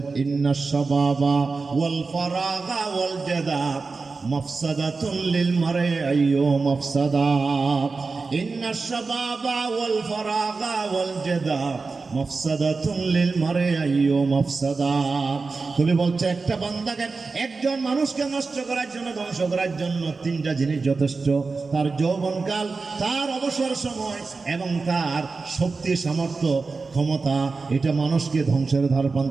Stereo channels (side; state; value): left; quieter; 4.2 dB